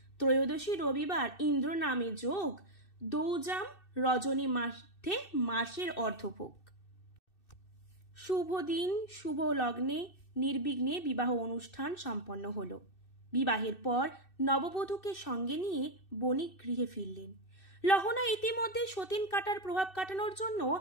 ত্রয়োদশী রবিবার ইন্দ্র নামে যোগ, দৌজাম রজনী মাসে মাসের অর্ধভোগ। শুভ দিন শুভ লগ্নে নির্বিঘ্নে বিবাহ অনুষ্ঠান সম্পন্ন হল। বিবাহের পর নববধূকে সঙ্গে নিয়ে বণিক গৃহে ফিরলেন। লহনা ইতিমধ্যে সতীন কাটার প্রভাব কাটানোর জন্য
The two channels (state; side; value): late; right; 2.6 ms